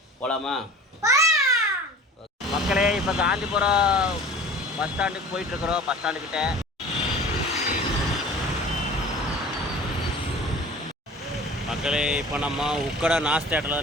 போகலாமா? மக்களே, இப்போ காந்திபுரம் பஸ் ஸ்டாண்டுக்கு போயிட்டுருக்குறோம். பஸ் ஸ்டாண்டுக்கிட்ட மக்களே, இப்போ நம்ம உக்கடை நாஸ் தேட்டரில்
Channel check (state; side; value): normal; both; correlation 0.42